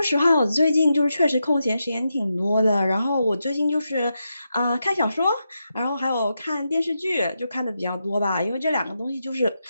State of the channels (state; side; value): inverted; both; correlation -0.86